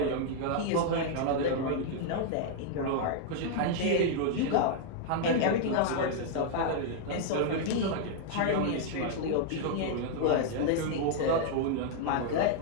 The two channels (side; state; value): both; different; correlation 0.00